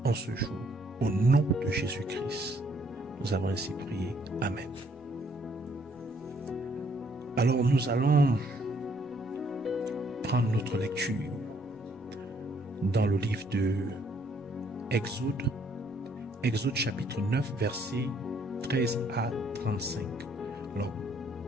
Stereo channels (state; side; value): normal; both; correlation 0.66